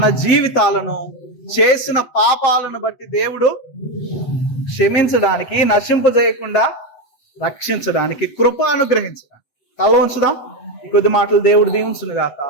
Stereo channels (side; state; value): right; late; 8.0 ms